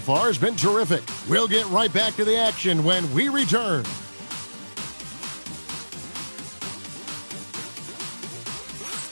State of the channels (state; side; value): inverted; both; correlation -1.00